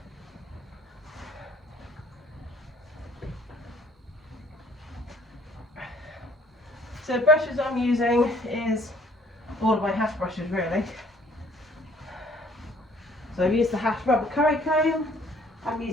So the brushes I'm using is all of my hash brushes really. So I've used the hash rubber curry comb, I'm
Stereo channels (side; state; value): both; normal; correlation 0.59